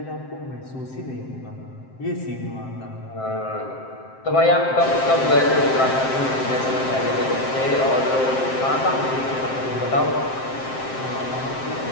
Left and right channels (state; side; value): late; right; 7.6 ms